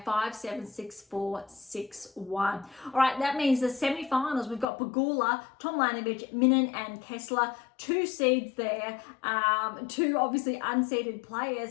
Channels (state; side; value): drops out; right; at 4.7 s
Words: 5-7, 6-4, 6-1. All right, that means the semi-finals, we've got Pegula, Tomljanovic, Minen, and Kessler, 2 seeds there, 2 obviously unseeded